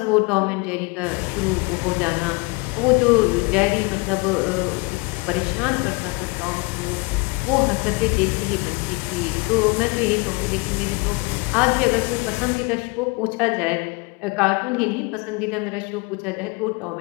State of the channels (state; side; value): quieter; right; 27.5 dB